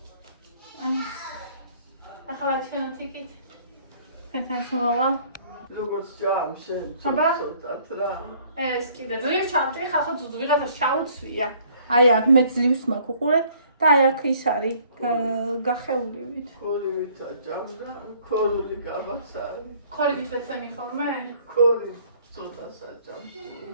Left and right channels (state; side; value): inverted; both; correlation -0.59